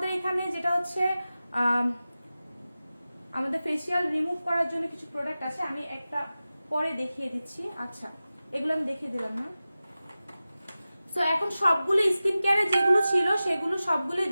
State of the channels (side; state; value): both; inverted; correlation -0.95